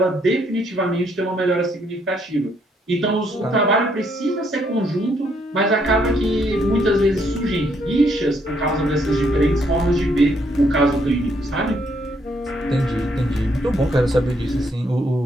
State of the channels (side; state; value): both; normal; correlation 0.71